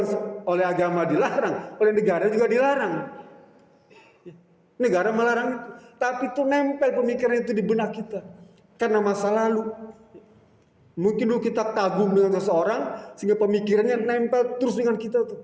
oleh agama dilarang, oleh negara juga dilarang. Negara melarang itu, tapi itu nempel pemikiran itu di benak kita karena masa lalu. Mungkin dulu kita kagum dengan seseorang sehingga pemikirannya nempel terus dengan kita tuh.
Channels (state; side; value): identical; both; correlation 1.00